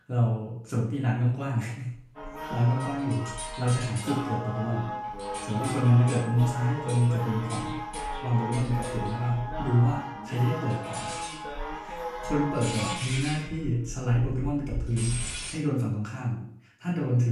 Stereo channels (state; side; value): identical; both; correlation 1.00